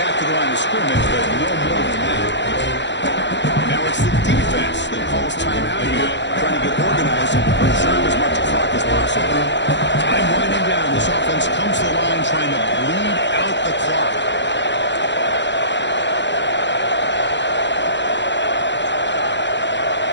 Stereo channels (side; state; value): right; late; 0.52 ms